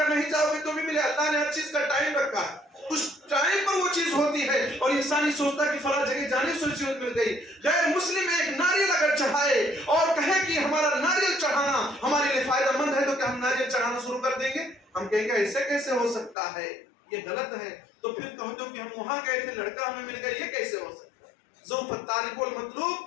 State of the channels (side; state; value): right; drops out; at 16.4 s